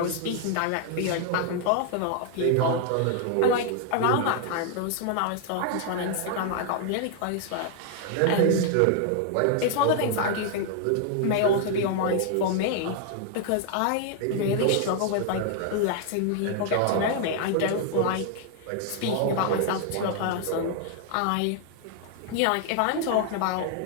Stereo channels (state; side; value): different; both; correlation 0.00